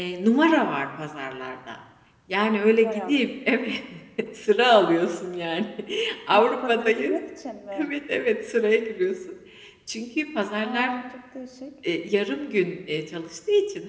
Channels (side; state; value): both; identical; correlation 1.00